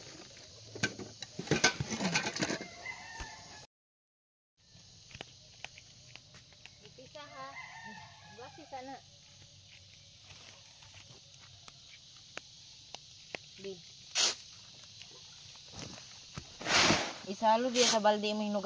Ipisa ha. Gawasi sana. Bi. Isalo diya sa balde mo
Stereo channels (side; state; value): both; identical; correlation 1.00